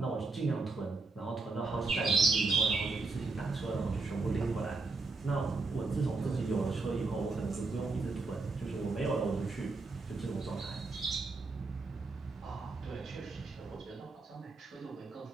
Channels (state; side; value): quieter; left; 3.7 dB